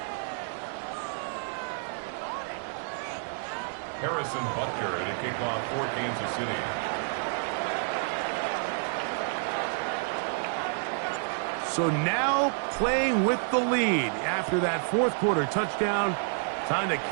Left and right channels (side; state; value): left; silent; digital silence